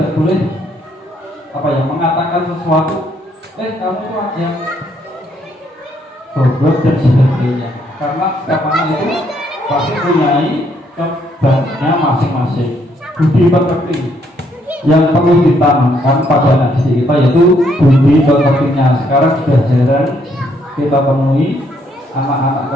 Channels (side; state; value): both; normal; correlation 0.71